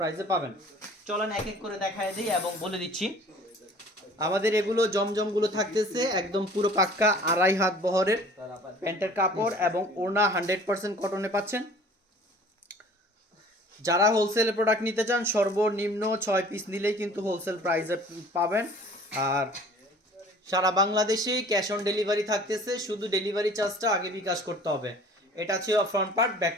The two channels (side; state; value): both; normal; correlation 0.48